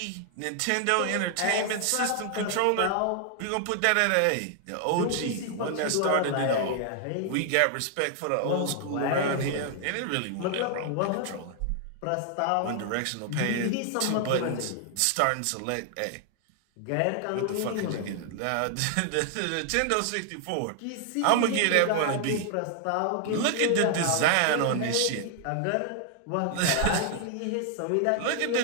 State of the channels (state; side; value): different; both; correlation 0.00